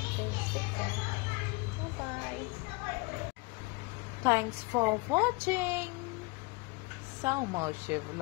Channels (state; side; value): quieter; right; 26.6 dB